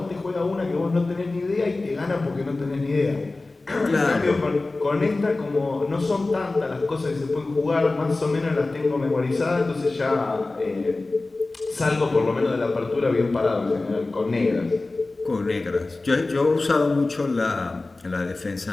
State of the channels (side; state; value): right; quieter; 3.2 dB